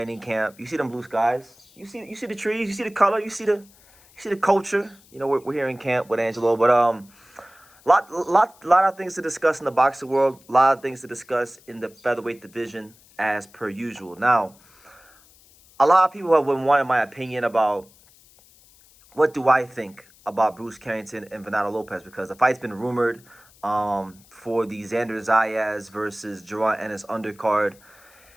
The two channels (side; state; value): left; noise; hiss, 27 dB below the sound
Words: camp. You see them blue skies? You see the trees? You see the color? You see the culture? You know, we're here in camp with Angelo, but lot of things to discuss in the boxing world. A lot of things to discuss in the featherweight division, as per usual. Now, a lot of people have been wanting my opinion about what do I think about Bruce Carrington and Venado Lopez, because the fight's been rumored for the Xander Zayas versus Jerron Ennis undercard.